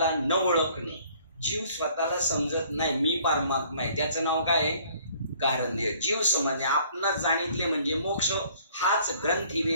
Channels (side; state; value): both; inverted; correlation -0.58